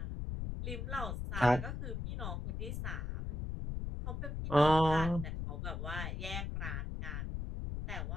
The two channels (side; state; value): left; noise; rumble, 4 dB below the sound